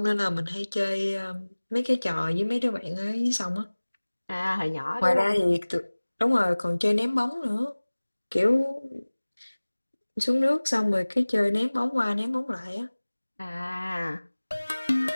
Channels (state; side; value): inverted; both; correlation -1.00